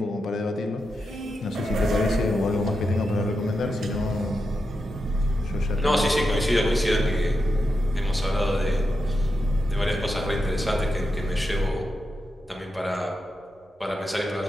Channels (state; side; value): normal; both; correlation 0.87